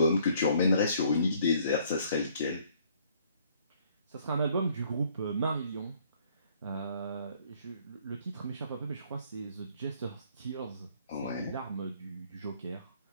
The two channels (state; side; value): inverted; both; correlation -0.62